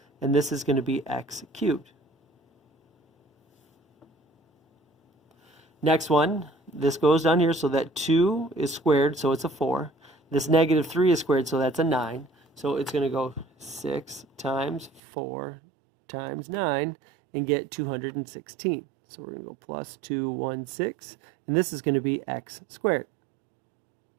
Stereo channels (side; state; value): left; drops out; at 15.0 s